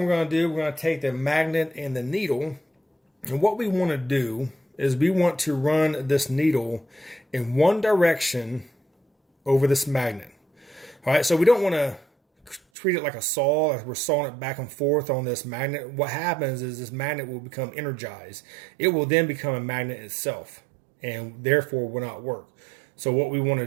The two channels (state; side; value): drops out; left; at 12.6 s